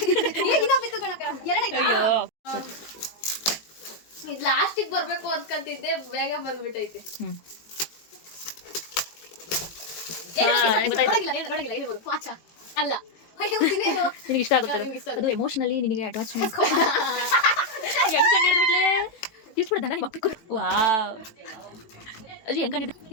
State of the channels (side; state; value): right; late; 18 ms